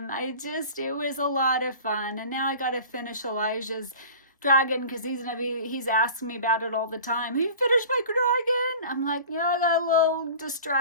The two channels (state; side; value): inverted; both; correlation -0.40